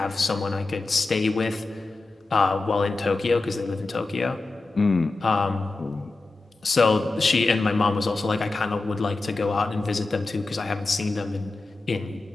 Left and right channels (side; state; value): right; quieter; 3.4 dB